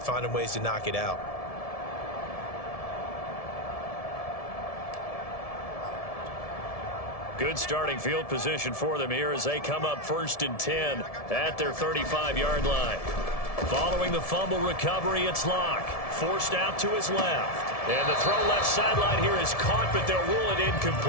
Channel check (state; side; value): late; right; 1.7 ms